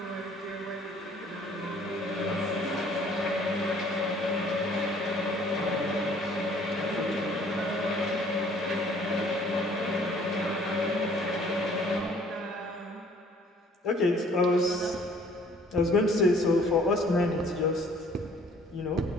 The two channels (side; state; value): both; normal; correlation 0.57